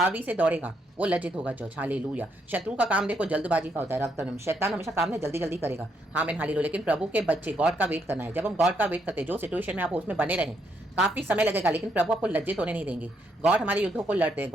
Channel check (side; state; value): both; normal; correlation 0.76